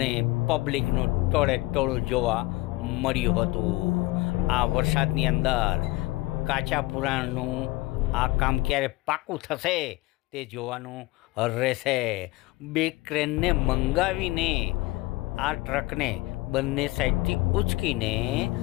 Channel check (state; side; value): quieter; right; 20.3 dB